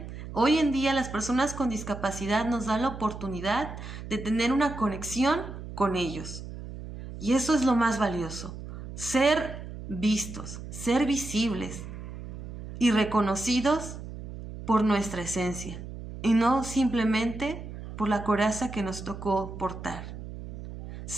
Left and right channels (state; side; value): noise; right; hum, 10 dB below the sound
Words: hoy en día las personas con discapacidad nos dan la oportunidad de tener una conexión con ellos. Y eso es lo más valioso, ser vistos, ser visibles y reconocidos por nuestra esencia y no simplemente por la coraza que nos tocó portar.